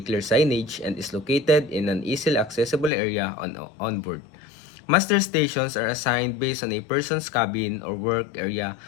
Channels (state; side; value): drops out; right; at 2.9 s